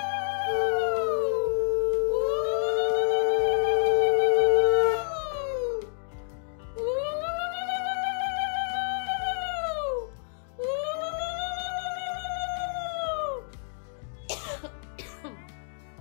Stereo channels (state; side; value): silent; right; digital silence